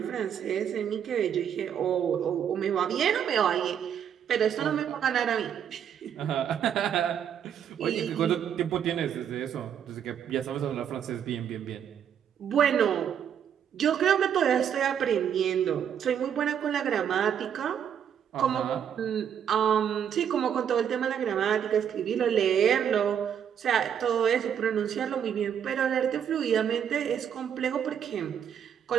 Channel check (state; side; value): quieter; left; 8.7 dB